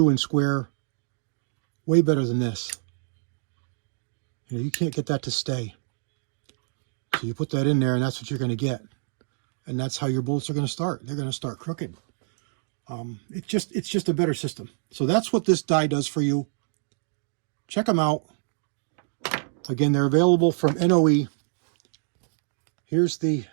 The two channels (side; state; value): left; silent; digital silence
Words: and square. Way better than this. You know, you can't get that to stay. So you put that in there and that's what you're going to get. And that's how your bullets are going to start. They're going to start crooked. It's just a better system. So that's what this die does for you. Check them out. Again, they're available from NOE. Here's the